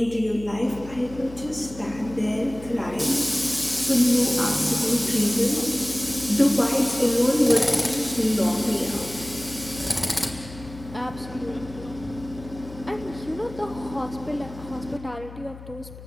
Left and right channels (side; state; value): left; noise; hum, 15 dB below the sound